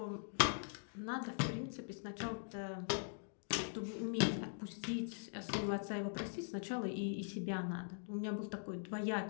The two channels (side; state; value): right; silent; digital silence